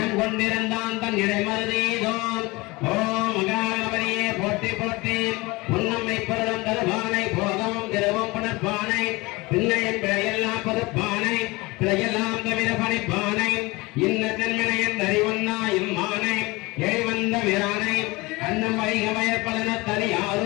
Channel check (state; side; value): quieter; right; 23.1 dB